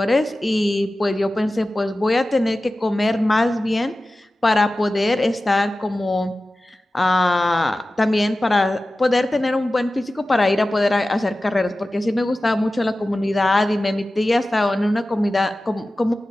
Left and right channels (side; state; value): both; normal; correlation 0.95